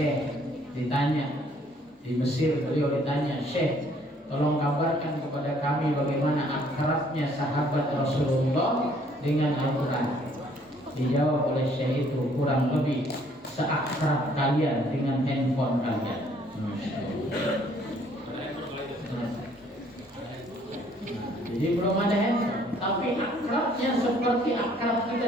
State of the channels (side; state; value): both; normal; correlation 0.62